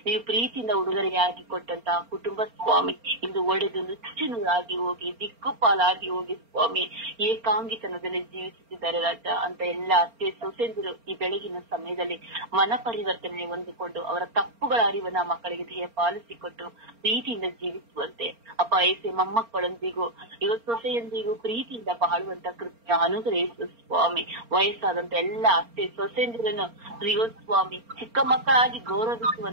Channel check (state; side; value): late; left; 4.3 ms